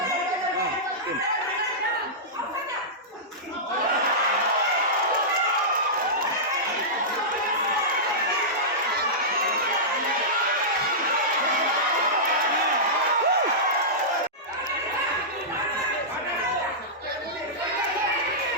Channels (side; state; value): both; normal; correlation -0.14